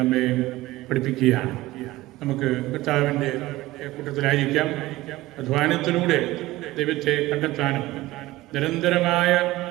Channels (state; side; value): quieter; left; 17.8 dB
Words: പഠിപ്പിക്കുകയാണ്. നമുക്ക് കർത്താവിൻ്റെ കൂട്ടത്തിലായിരിക്കാം. അധ്വാനത്തിലൂടെ ദൈവത്തെ കണ്ടെത്താനും നിരന്തരമായ